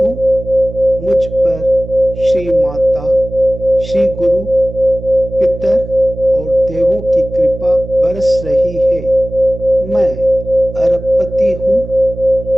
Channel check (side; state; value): right; noise; hum, 11 dB below the sound